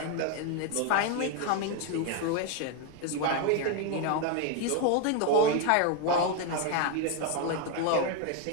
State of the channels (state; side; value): different; both; correlation 0.01